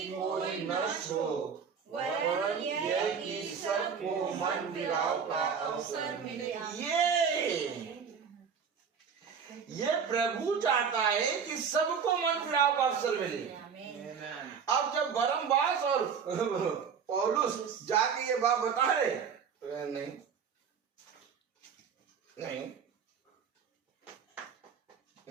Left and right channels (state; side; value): quieter; left; 6.6 dB